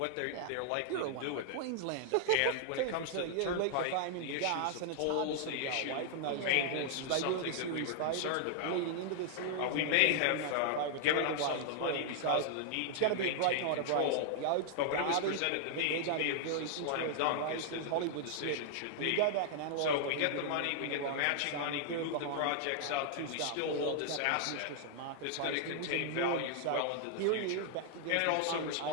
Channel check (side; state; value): both; different; correlation -0.01